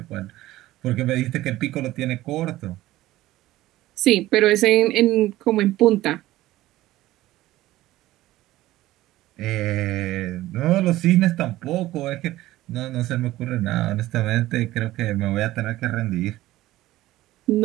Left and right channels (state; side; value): quieter; left; 16.2 dB